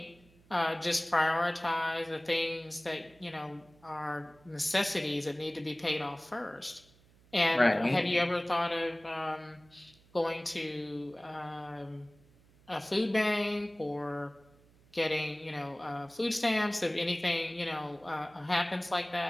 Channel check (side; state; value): right; noise; hum, 28 dB below the sound